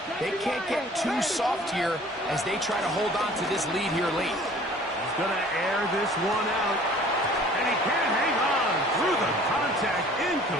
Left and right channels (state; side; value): normal; both; correlation 0.50